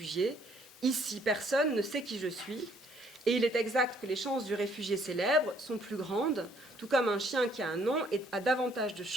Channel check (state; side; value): normal; both; correlation 0.64